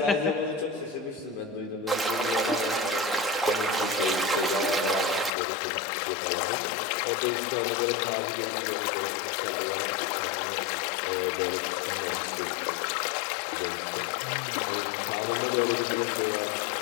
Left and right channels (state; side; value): drops out; right; at 5.3 s